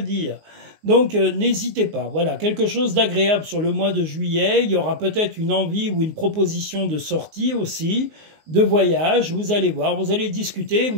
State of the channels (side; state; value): left; late; 19 ms